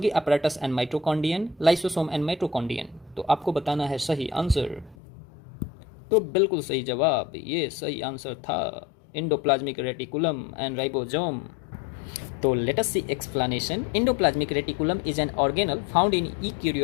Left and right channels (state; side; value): drops out; right; at 5.0 s